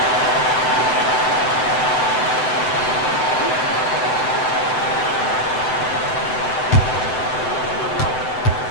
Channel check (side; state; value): right; late; 7.9 ms